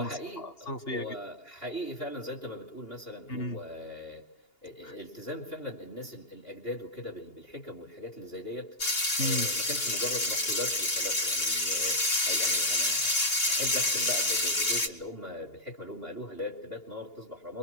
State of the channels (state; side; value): late; right; 2.8 ms